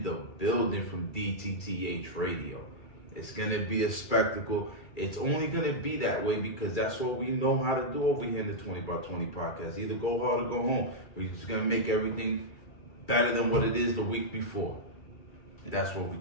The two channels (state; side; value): late; right; 2.4 ms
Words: the building from DTTH Radio. It's going to be a spectacle. It's only going to be that way because that's what we know how to do over here in the 20 by 20 podcast. Either go hard or go home. We're just going to make everything better than what it is the week before. That's what we